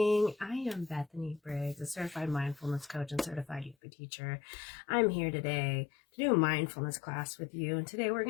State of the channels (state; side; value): drops out; right; at 3.8 s